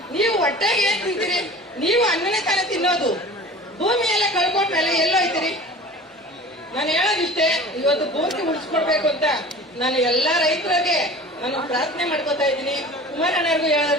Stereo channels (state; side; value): normal; both; correlation 0.40